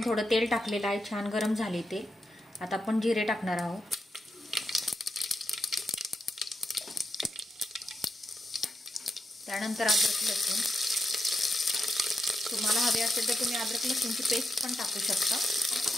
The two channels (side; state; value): both; normal; correlation 0.86